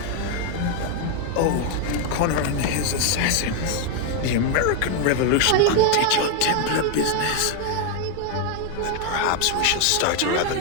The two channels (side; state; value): both; different; correlation 0.01